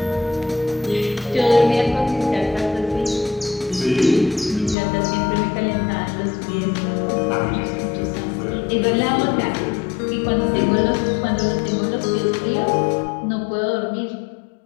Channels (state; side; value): drops out; right; at 4.8 s